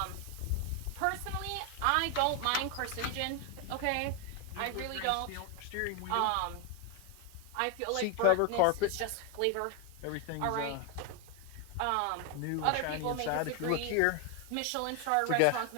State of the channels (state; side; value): different; both; correlation 0.01